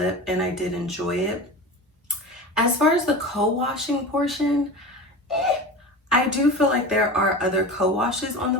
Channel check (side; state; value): both; normal; correlation 0.30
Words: and I did enjoy it. As far as the co-washing portion, I do feel like there are other co-washes on the